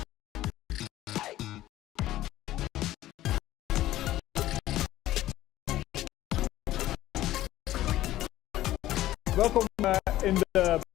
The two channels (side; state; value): right; quieter; 14.7 dB